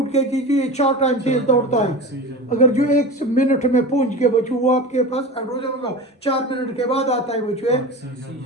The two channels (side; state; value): both; normal; correlation 0.29